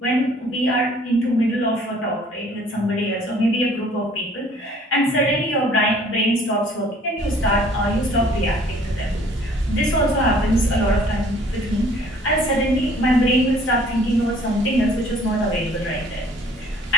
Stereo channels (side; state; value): both; normal; correlation 0.56